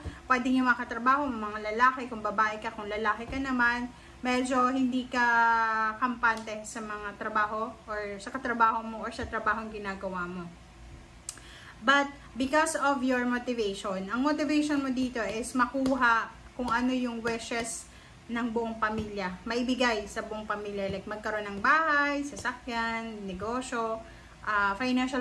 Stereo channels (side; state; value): both; identical; correlation 1.00